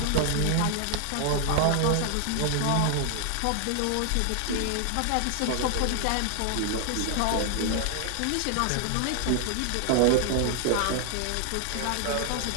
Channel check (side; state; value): both; different; correlation 0.00